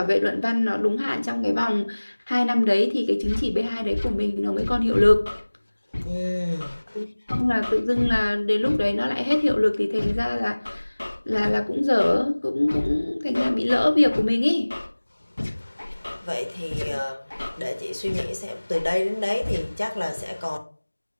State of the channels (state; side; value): inverted; both; correlation -1.00